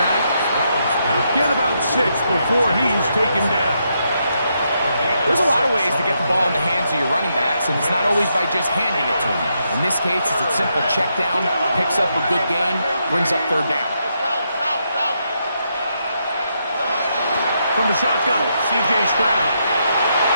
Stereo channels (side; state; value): both; inverted; correlation -0.80